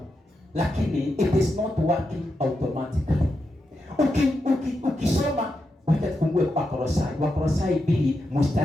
lakini it is not working automatically. Ukisoma, wacha tufungue Wakolosai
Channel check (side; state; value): both; normal; correlation 0.86